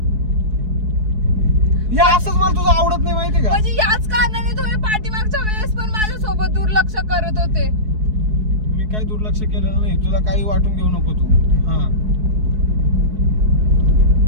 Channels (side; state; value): left; late; 4.7 ms